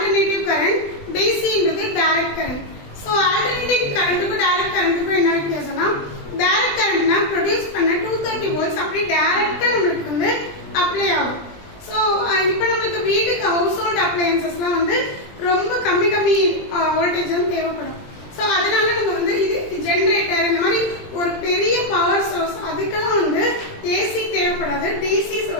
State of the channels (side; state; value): right; late; 20 ms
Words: கரண்ட், DC ன்றது டைரக்ட் கரண்ட். சோ ஆல்டர்னேட்டிவ் கரண்ட்க்கும் டைரக்ட் கரண்ட்க்கும் என்ன வித்தியாசம்னா டைரக்ட் கரண்ட்னா ப்ரொடியூஸ் பண்ண 230 வோல்ட்ஸ் அப்படியே டைரக்ட்டா நமக்கு வந்து அப்ளை ஆகும். சோ இப்போ நமக்கு வீட்டுக்கு ஹவுஸ் ஹோல்ட் அப்ளையன்சஸ்லாம் வந்து ரொம்ப கம்மி வோல்டேஜ் வந்து தேவைப்படும். சோ அதனால நம்ம வந்து இது ஜெனரேட்டர் இந்த மாதிரி ஒரு பெரிய பவர் சோர்ஸ் அதுக்கெல்லாம் வந்து ஏசி தேவைப்படாது, டிசி